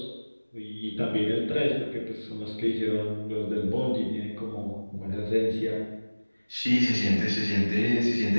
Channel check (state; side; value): inverted; both; correlation -1.00